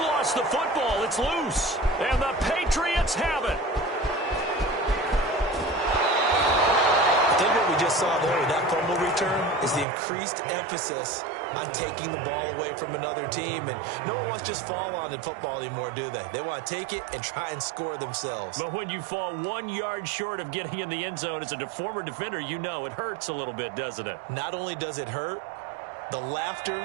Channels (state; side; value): drops out; left; at 9.9 s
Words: the football. It's loose. And the Patriots have it. I think what we just saw there with that fumble return is the increased emphasis on taking the ball away from another team. And no one wants to just fall on in football anymore, do they? They want to take it and try and score themselves. But when you fall 1 yard short of getting in the end zone as a former defender, you know it hurts a little bit, doesn't it? Not only does it hurt, the